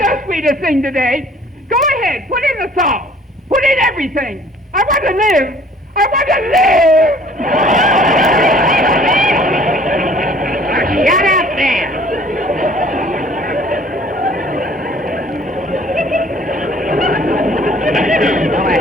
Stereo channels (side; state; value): both; normal; correlation 0.53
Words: the sweetest thing today. Go ahead, put in the salt. Put in everything. I want to live. I want to live! Shut up there. Go